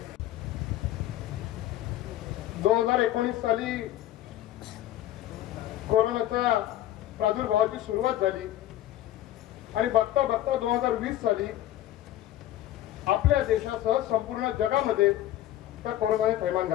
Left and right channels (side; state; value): right; quieter; 13.6 dB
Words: साली कोरोनाच्या प्रादुर्भावाची सुरुवात झाली आणि बघता बघता 2020 साली आपल्या देशासह संपूर्ण जगामध्ये त्या कोरोनाने थैमान